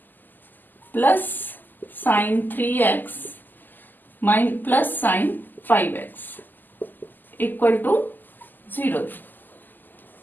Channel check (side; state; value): right; late; 0.088 ms